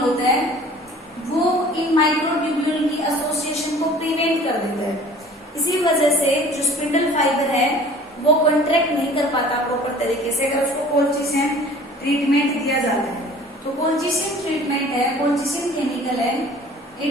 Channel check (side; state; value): both; normal; correlation 0.48